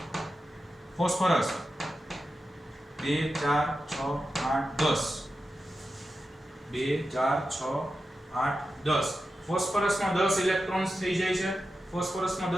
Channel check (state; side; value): normal; both; correlation 0.91